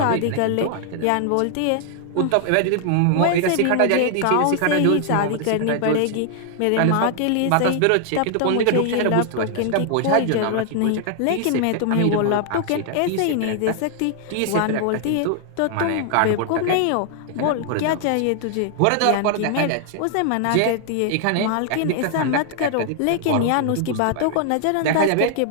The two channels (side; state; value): both; different; correlation 0.00